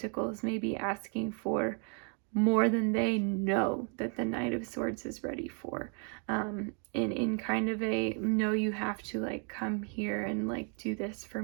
may be asking for more than they know that the Knight of Swords is ready for. In kind of a, no, you have to like come here and like do this for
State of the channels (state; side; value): quieter; left; 39.7 dB